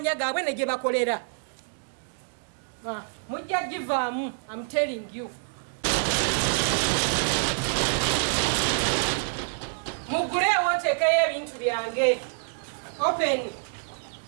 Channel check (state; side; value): silent; left; digital silence